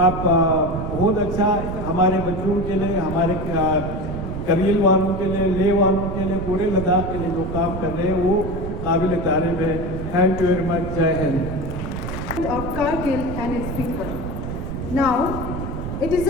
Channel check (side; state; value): right; noise; rumble, 6 dB below the sound